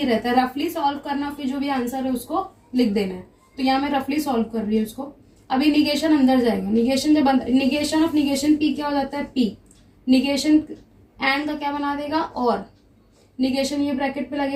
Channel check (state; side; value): identical; both; correlation 1.00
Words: रहता है, रफली सॉल्व करना, फिर जो भी आंसर है उसको लिख देना है। तो यहाँ मैं रफली सॉल्व कर रही हूँ इसको। अभी निगेशन अंदर जाएगा, निगेशन जब निगेशन ऑफ निगेशन पी क्या हो जाता है, पी। निगेशन एंड का क्या बना देगा, और। निगेशन ये ब्रैकेट पे